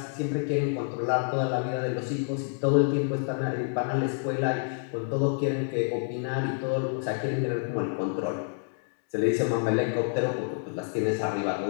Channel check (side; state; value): right; silent; digital silence